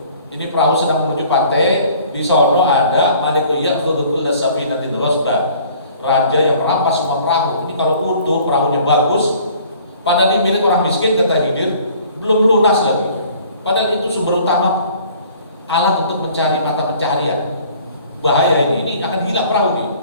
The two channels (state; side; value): inverted; both; correlation -0.53